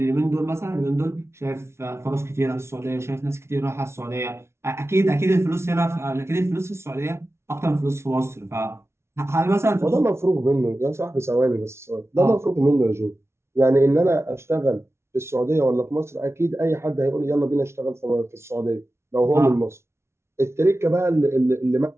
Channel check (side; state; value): left; late; 0.13 ms